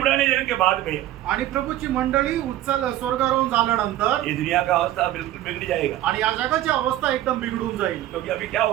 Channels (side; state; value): left; quieter; 13.9 dB